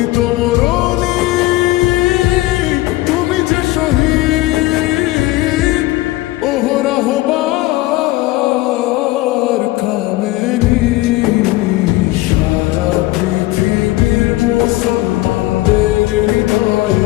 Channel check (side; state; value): right; quieter; 18.1 dB